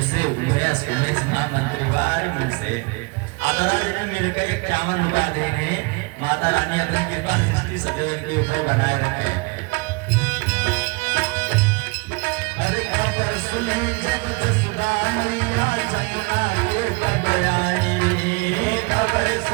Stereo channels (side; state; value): left; quieter; 28.0 dB